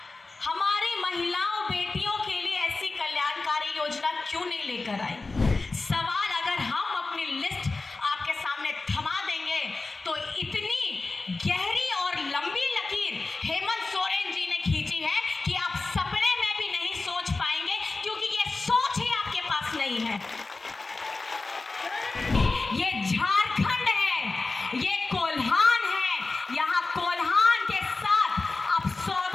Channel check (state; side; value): quieter; right; 3.6 dB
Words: हमारी महिलाओं बेटियों के लिए ऐसी कल्याणकारी योजना क्यों नहीं लेकर आई? सवाल अगर हम अपनी लिस्ट आपके सामने थमा देंगे तो इतनी गहरी और लंबी लकीर हेमंत सोरेन जी ने खींची है कि आप सपने में भी नहीं सोच पाएंगे, क्योंकि ये सोच ही आपके पास नहीं है। ये झारखंड है, ये कोल्हान है। यहाँ कोल्हान के साथ आप